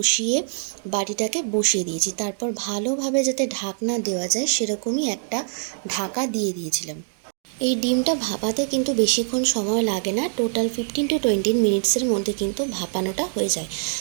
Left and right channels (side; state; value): left; silent; 60 dB below the other